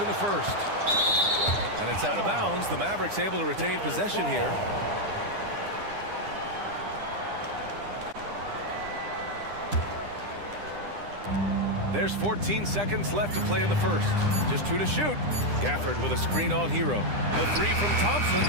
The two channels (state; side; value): late; left; 9.9 ms